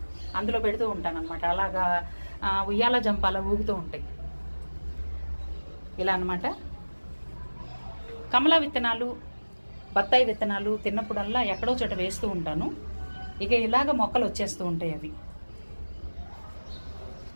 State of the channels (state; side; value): inverted; both; correlation -1.00